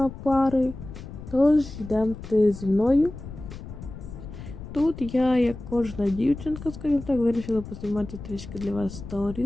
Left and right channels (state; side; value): noise; left; rumble, 12 dB below the sound